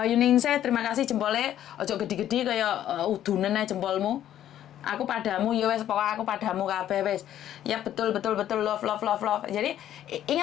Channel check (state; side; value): quieter; right; 11.5 dB